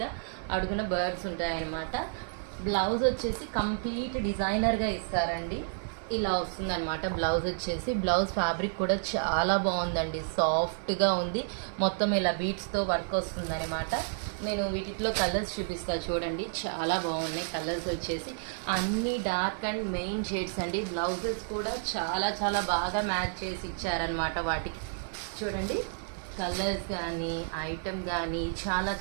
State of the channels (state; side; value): silent; left; 57 dB below the other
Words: అడుగున బర్డ్స్ ఉంటాయన్నమాట. బ్లౌజ్ వచ్చేసి కంప్లీట్ డిజైనర్గా ఇస్తారండి. ఇలా వస్తుందన్నమాట బ్లౌజ్ వచ్చేసి. బ్లౌజ్ ఫ్యాబ్రిక్ కూడా చాలా బాగుందండి, సాఫ్ట్గా ఉంది. మొత్తం ఇలా బీట్స్తో వర్క్ వస్తుందన్నమాట. నేను వీటిలో కలర్స్ చూపిస్తాను చూడండి, చాలా బాగున్నాయి కలర్స్ వచ్చేసి. అన్ని డార్క్ అండ్ మెయిన్ షేడ్స్ అండి. బ్లౌజెస్ కూడా చాలా బాగా మ్యాచ్ చేసి ఇచ్చారనమాట వాటికి. చూడండి కలర్స్ కానీ ఐటమ్ కానీ